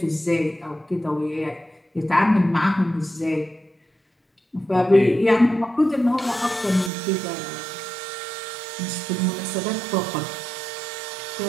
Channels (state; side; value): drops out; left; at 6.9 s